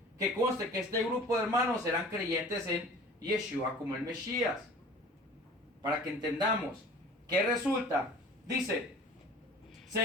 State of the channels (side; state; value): both; normal; correlation 0.44